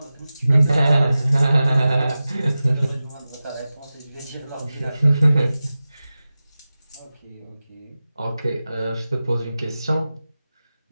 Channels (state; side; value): inverted; both; correlation -0.95